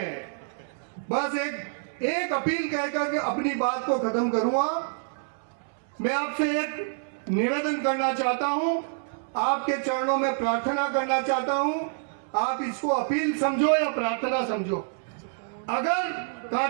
बस एक अपील कहकर अपनी बात को खत्म करूंगा। मैं आपसे एक निवेदन करना चाहता हूं, आपके चरणों में प्रार्थना करना चाहता हूं। आप इसको अपील समझो या प्रार्थना समझो। अगर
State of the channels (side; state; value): left; silent; 60 dB below the other